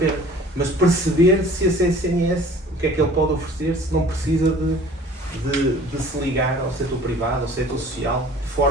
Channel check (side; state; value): both; normal; correlation 0.48